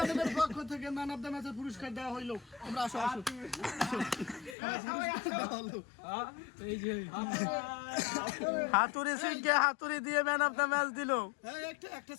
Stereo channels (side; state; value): right; drops out; at 4.5 s